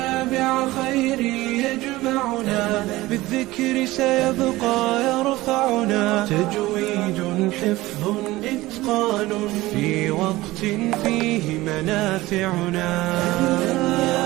خيري يجمعنا بالذكر سيبقى يرفعنا تجويد حفظ إتقان في وقت فيه منافعنا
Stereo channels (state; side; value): quieter; left; 18.5 dB